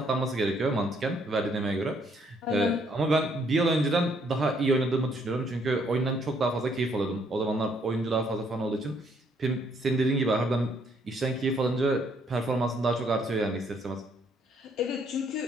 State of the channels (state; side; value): normal; both; correlation 0.68